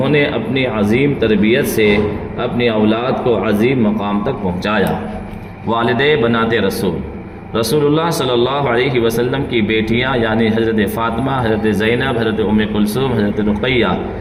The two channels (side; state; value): both; identical; correlation 1.00